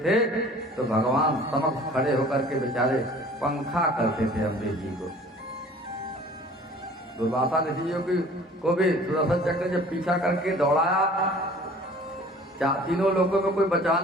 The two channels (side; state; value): both; normal; correlation 0.48